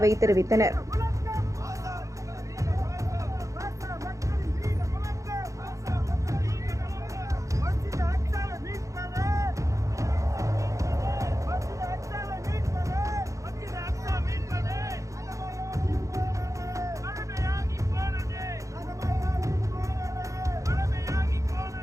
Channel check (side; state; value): left; late; 0.15 ms